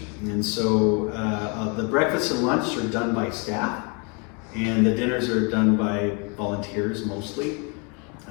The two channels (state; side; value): quieter; right; 34.0 dB